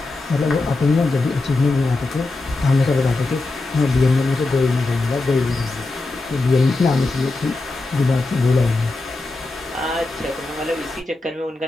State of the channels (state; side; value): quieter; right; 3.2 dB